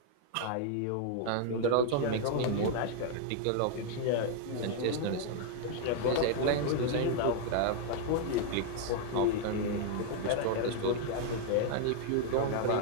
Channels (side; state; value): both; different; correlation 0.00